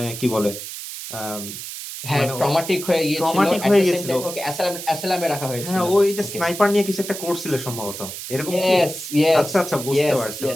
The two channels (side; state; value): right; noise; hiss, 9 dB below the sound